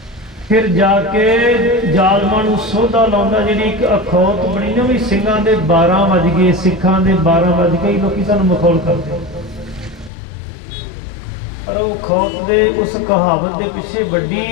ਫਿਰ ਜਾ ਕੇ ਜ਼ਾਲਮਾਂ ਨੂੰ ਸੋਧਾ ਲਾਉਂਦਾ। ਜਿਹੜੀ ਇੱਕ ਅਖੌਤ ਬਣੀ ਨਾ ਵੀ ਸਿੰਘਾਂ ਦੇ 12 ਵੱਜ ਗਏ, ਸਿੱਖਾਂ ਦੇ 12 ਵੱਜ ਗਏ, ਲੋਕੀ ਸਾਨੂੰ ਮਖੌਲ ਕਰਦੇ। ਪਰ ਉਹ ਖੌਫ ਦੇ ਉਸ ਕਹਾਵਤ ਦੇ ਪਿੱਛੇ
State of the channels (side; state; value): right; drops out; at 10.1 s